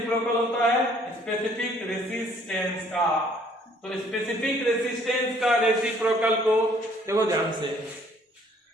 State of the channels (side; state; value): both; normal; correlation 0.61